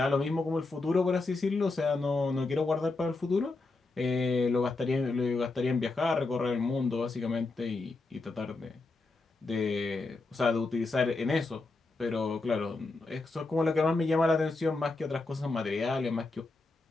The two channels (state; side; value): quieter; right; 3.5 dB